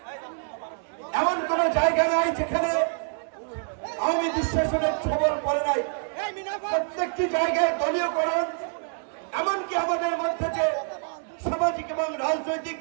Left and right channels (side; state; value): left; silent; 59 dB below the other